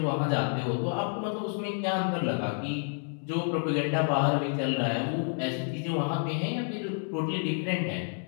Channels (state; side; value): silent; right; 56 dB below the other